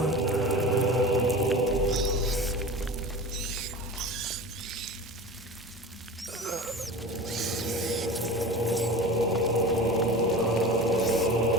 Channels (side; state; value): both; normal; correlation 0.33